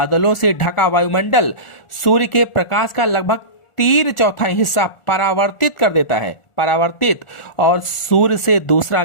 से ढका वायुमंडल सूर्य के प्रकाश का लगभग 3/4 हिस्सा परावर्तित कर देता है। परावर्तित। और सूर्य से दूसरा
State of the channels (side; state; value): right; late; 1.4 ms